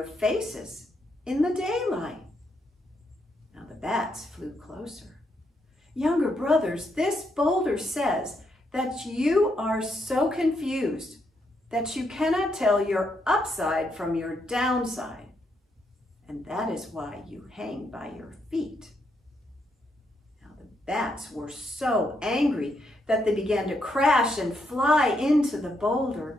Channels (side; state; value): both; normal; correlation 0.78